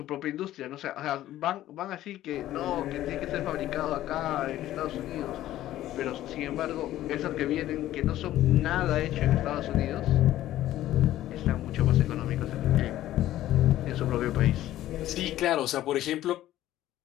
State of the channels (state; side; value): quieter; right; 13.8 dB